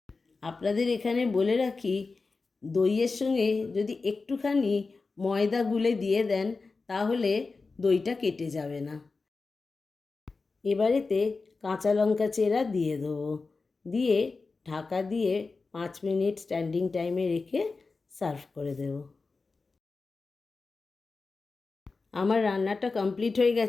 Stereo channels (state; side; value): quieter; right; 4.1 dB